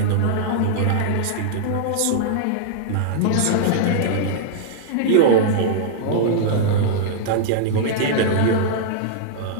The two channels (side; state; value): both; different; correlation -0.01